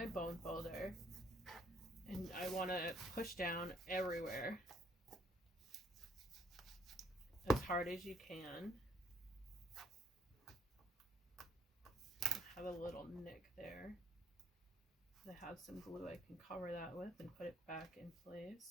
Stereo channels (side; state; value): both; normal; correlation 0.66